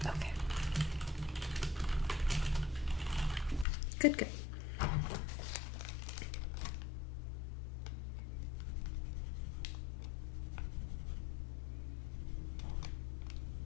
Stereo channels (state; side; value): drops out; right; at 3.7 s